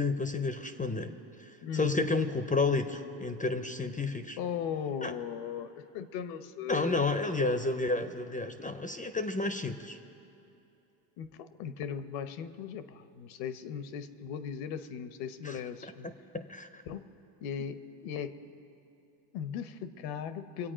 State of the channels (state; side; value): quieter; right; 3.7 dB